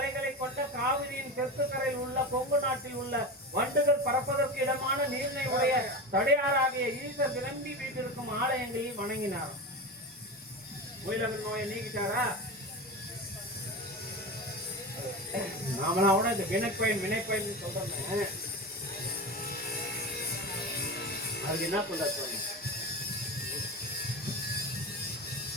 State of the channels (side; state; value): both; normal; correlation 0.24